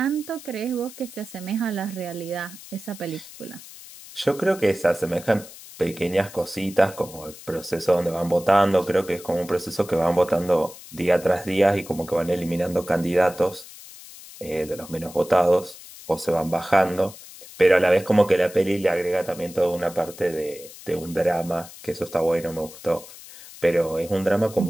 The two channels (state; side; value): noise; left; hiss, 17 dB below the sound